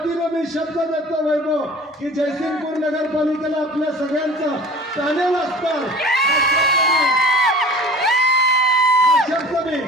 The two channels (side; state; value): both; normal; correlation 0.43